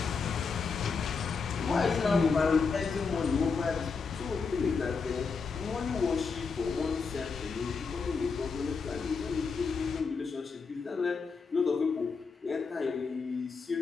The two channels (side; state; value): right; quieter; 5.0 dB